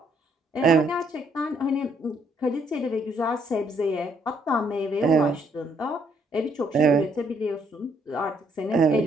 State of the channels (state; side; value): normal; both; correlation 0.69